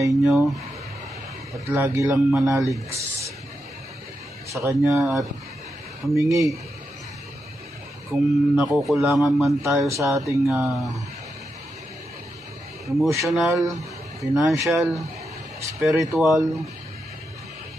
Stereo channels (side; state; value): both; normal; correlation 0.85